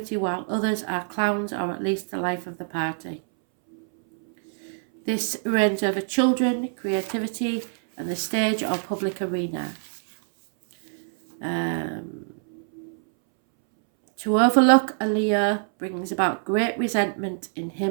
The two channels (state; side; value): silent; left; 62 dB below the other